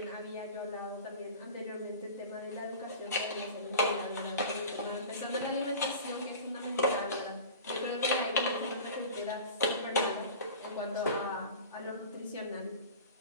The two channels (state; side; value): inverted; both; correlation -0.36